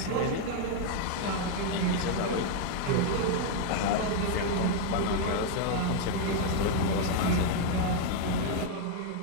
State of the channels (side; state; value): both; different; correlation 0.00